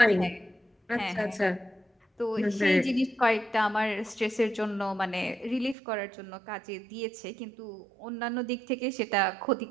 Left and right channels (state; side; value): drops out; left; at 5.8 s